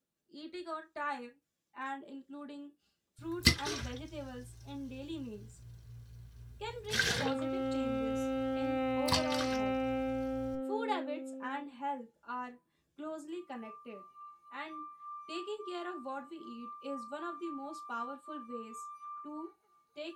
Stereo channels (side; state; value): both; identical; correlation 1.00